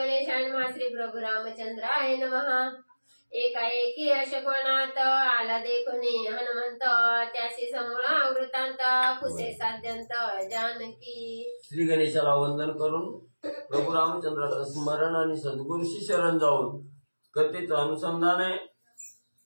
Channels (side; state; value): both; inverted; correlation -1.00